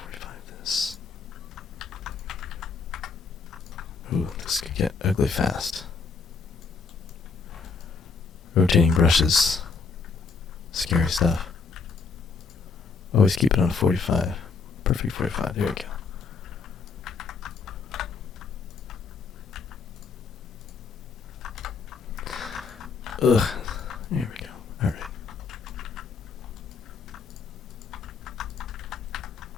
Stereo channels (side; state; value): right; quieter; 5.0 dB